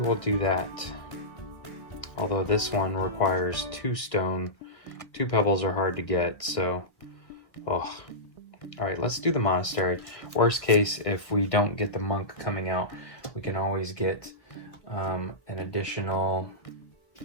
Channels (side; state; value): right; late; 1.7 ms